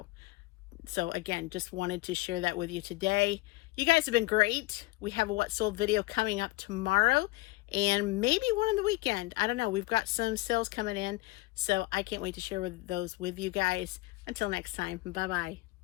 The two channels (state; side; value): quieter; right; 20.9 dB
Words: So again, just wanted to share that with you today. You guys have been great. We have a What Sold video coming up tomorrow, and maybe one on the weekend. I don't know. We've got some sales coming in, so I can't wait to share those with you guys. Until next time, bye-bye.